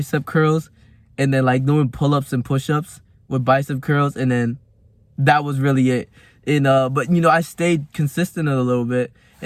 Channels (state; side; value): identical; both; correlation 1.00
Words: curls and then like doing pull-ups and push-ups with bicep curls, and then that was really it. And but I stayed consistent a little bit,